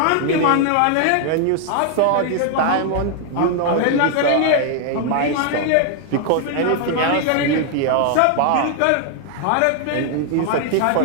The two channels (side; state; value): both; different; correlation 0.00